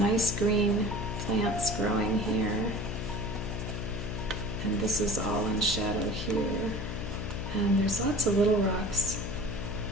green plants growing here, and this is all in shadow here. And there's lots of little rocks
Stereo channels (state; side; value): noise; left; hum, 5 dB below the sound